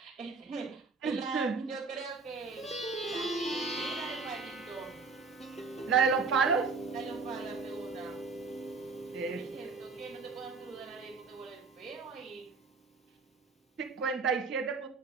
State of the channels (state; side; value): quieter; left; 4.5 dB